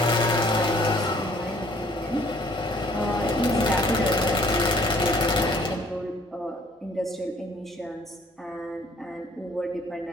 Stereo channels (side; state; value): both; normal; correlation 0.58